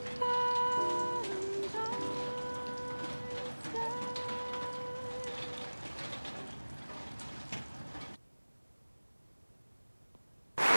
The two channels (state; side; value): inverted; both; correlation -1.00